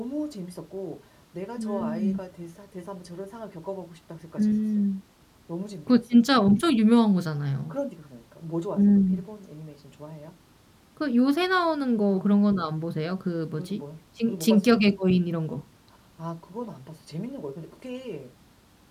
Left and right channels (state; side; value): identical; both; correlation 1.00